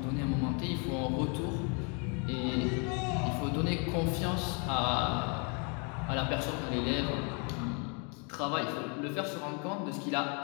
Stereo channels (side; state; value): right; quieter; 35.9 dB